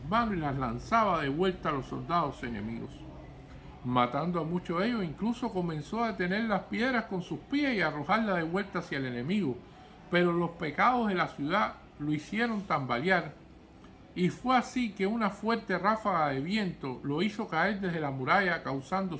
manos y las lanzaba de vuelta a los soldados enemigos, matando a muchos de ellos. Incluso comenzó a detener las piedras con sus pies y a arrojarlas de vuelta hacia el enemigo. Pero los pecados de la ciudad lo hicieron tambalear, y fue así que una fuerte ráfaga de viento lo hizo caer desde la muralla, causando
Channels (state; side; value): identical; both; correlation 1.00